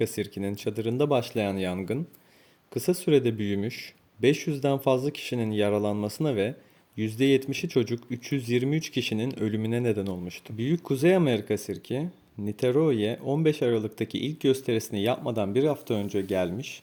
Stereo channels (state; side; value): identical; both; correlation 1.00